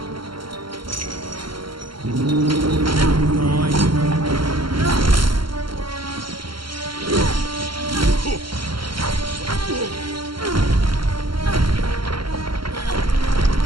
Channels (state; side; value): late; left; 0.73 ms